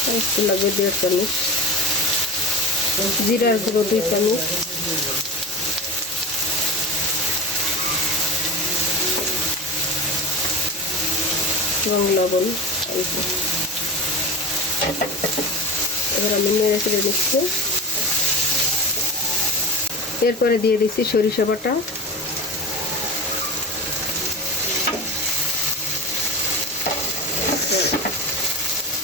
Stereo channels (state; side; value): normal; both; correlation 0.29